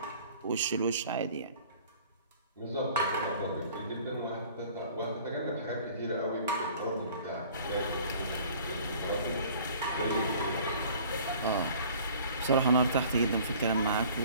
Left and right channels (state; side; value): inverted; both; correlation -0.50